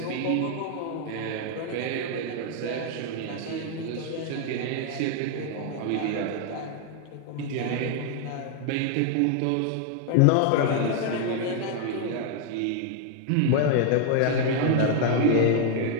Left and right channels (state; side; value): different; both; correlation 0.00